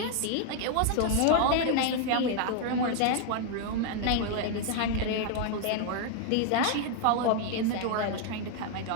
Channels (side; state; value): both; different; correlation 0.00